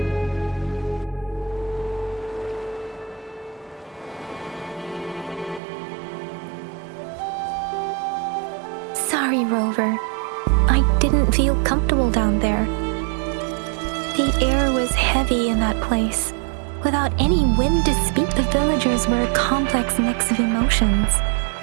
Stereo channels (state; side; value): drops out; left; at 5.6 s